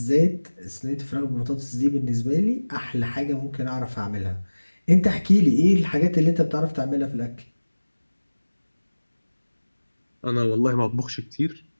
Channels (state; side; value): inverted; both; correlation -1.00